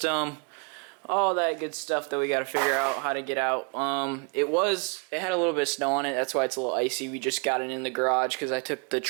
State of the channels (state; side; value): quieter; left; 37.3 dB